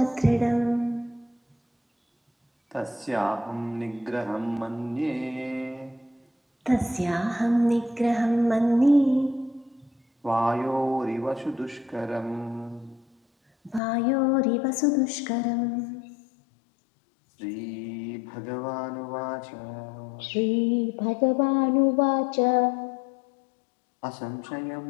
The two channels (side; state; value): right; drops out; at 13.8 s